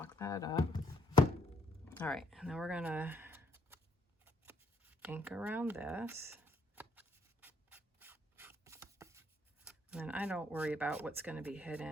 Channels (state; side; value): normal; both; correlation 0.70